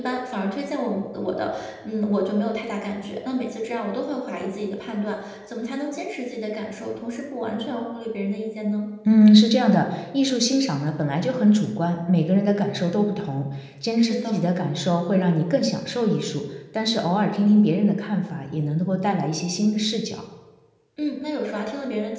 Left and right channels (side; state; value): both; identical; correlation 1.00